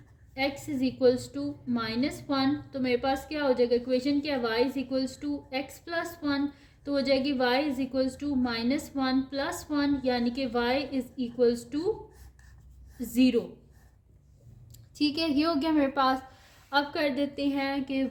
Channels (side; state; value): both; identical; correlation 1.00